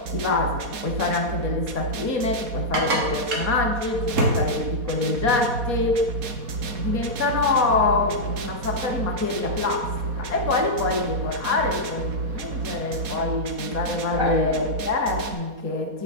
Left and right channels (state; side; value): late; left; 4.2 ms